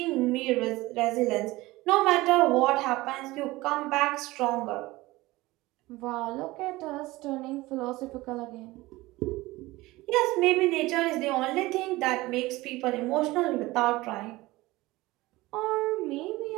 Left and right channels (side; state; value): left; quieter; 19.6 dB